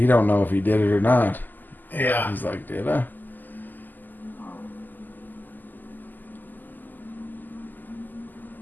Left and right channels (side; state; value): right; late; 0.086 ms